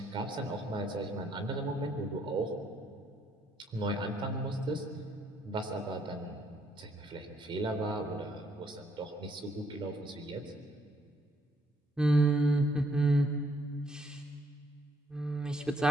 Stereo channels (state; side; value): normal; both; correlation 0.69